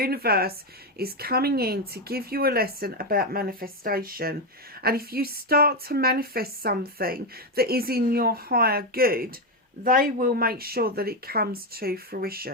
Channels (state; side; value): normal; both; correlation 0.08